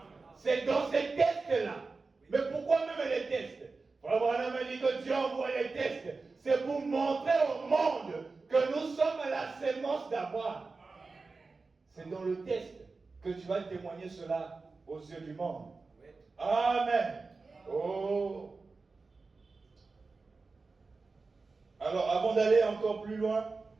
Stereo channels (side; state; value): left; quieter; 4.0 dB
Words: C'est dans ces tests-là. Mais pourquoi même les tests? Frère Branham a dit que Dieu envoie les tests. C'est pour montrer au monde que nous sommes la sémence d'Abraham. C'est dans le test que tu vas témoigner cela aux yeux du monde. Amen. Oh. Alors, avant d'aller encore plus loin,